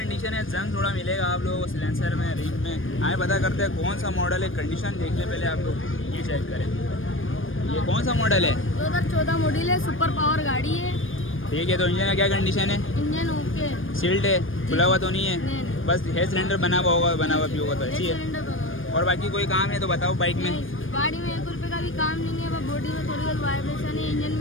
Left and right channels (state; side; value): late; right; 0.59 ms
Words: है, जंग थोड़ा मिलेगा आप लोगों को सिलेंसर में, रिंग में। आए पता करते हैं कौन सा मॉडल है, कंडीशन देख लें पहले आप लोग। ये चेक करें, ये कौन सा मॉडल है? 2014 मॉडल है, सुपर पावर गाड़ी है। ठीक है, तो इंजन का क्या कंडीशन है? इंजन ओके, सील्ड है, खुला हुआ तो नहीं है? नहीं। बस हेयर सिलेंडर बना हुआ भी होगा तो अच्छी है। और बाकी कोई काम है तो बताओ बाइक में। गाड़ी में 1 रुपये का भी काम नहीं है, बॉडी में थोड़ी बहुत वाइब्रेशन है। इंजन